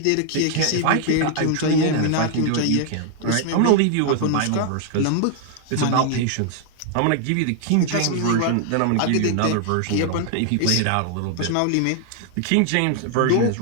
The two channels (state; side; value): different; both; correlation 0.00